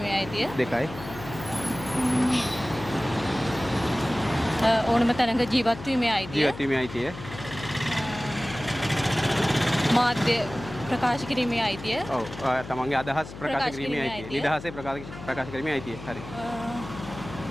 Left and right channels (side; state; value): left; noise; hum, 13 dB below the sound